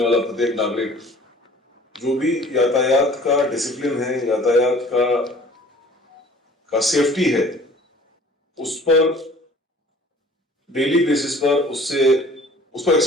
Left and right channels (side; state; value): both; normal; correlation 0.50